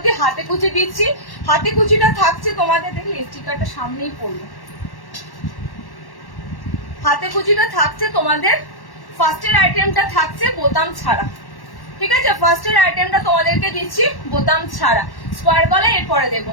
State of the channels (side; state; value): right; late; 1.1 ms